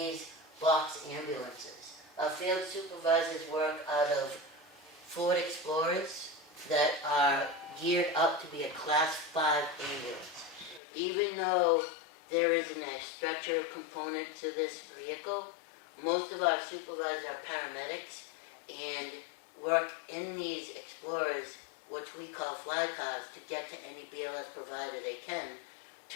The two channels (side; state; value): right; drops out; at 10.8 s